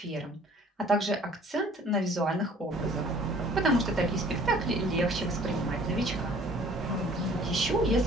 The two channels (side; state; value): both; normal; correlation 0.53